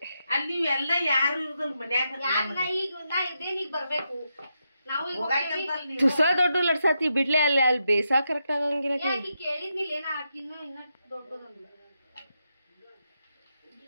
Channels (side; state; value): both; inverted; correlation -0.84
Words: ಅಲ್ಲಿ ಎಲ್ಲ ಯಾರು ಇರುದಲ್ ಮನ್ಯಾಗ ಬರ್ಬೇಕು ತುಸ ದೊಡ್ಡ ಲಡ್ಸಾತಿ ಬಿಡ್ಲೆ ಅಲ್ಲಿ ಬೇಸಾ ಕರೆಕ್ಟ್ ಆಗಂಗಿಲ್ಲ